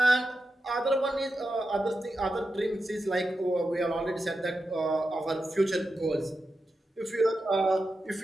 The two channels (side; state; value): both; normal; correlation 0.89